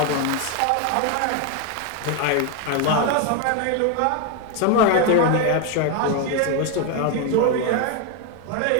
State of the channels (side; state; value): both; different; correlation 0.01